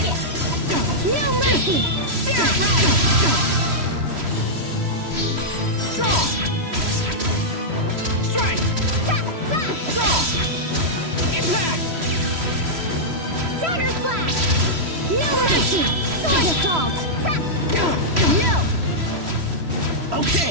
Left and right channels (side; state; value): left; late; 3.0 ms